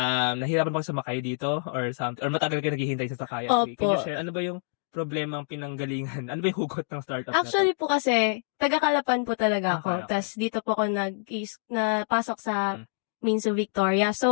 bang sumakay dito or something, or matagal kayo naghihintay sa sakayan? Opo. Can you share, ano ba yung problema ang pinanggalingan? Ano ba yung hugot ng startup Actually na to? po kasi, taga-Kalapan po talaga ako. Okay. Tas dito po ako napasok sa Minsu Victoria.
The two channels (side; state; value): right; silent; digital silence